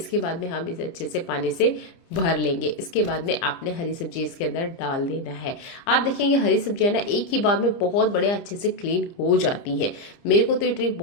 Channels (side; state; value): right; late; 30 ms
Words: बाद में हम इसे अच्छे से पानी से भर लेंगे। इसके बाद में आपने हरी सब्जी इसके अंदर डाल देना है। आप देखेंगे हरी सब्जियां ना एक ही बार में बहुत बड़े अच्छे से क्लीन हो जाती हैं। मेरे को तो ये ट्रिक